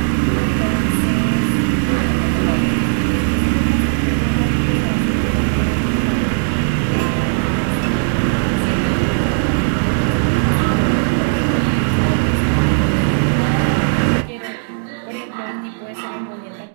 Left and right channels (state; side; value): silent; left; digital silence